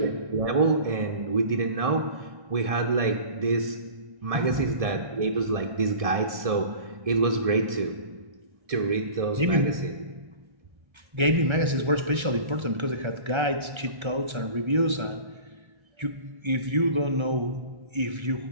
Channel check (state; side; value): late; left; 1.3 ms